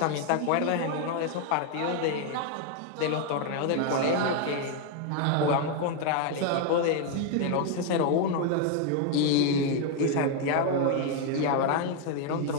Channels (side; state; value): both; different; correlation 0.01